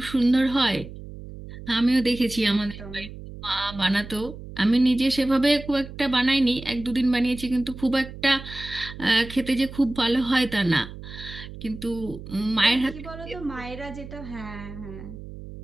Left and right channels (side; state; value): right; noise; hum, 13 dB below the sound